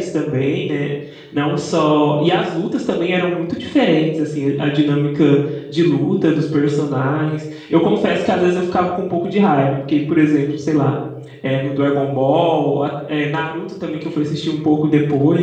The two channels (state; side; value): identical; both; correlation 1.00